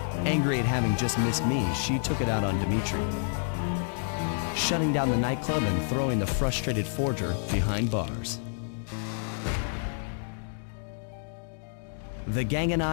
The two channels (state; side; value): silent; right; digital silence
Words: Angry at having just missed me, she took it out on Dimitri, shutting down the nightclub and throwing the frustrated forger behind bars. The gang and